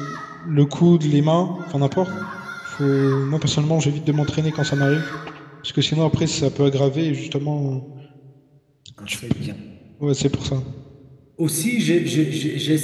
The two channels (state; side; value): identical; both; correlation 1.00